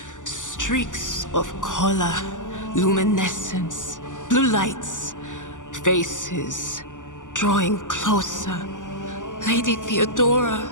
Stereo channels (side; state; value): right; late; 0.87 ms